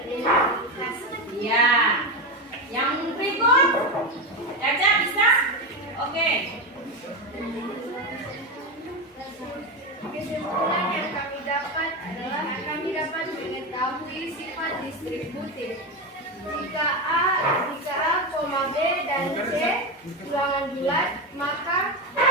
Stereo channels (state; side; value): normal; both; correlation 0.15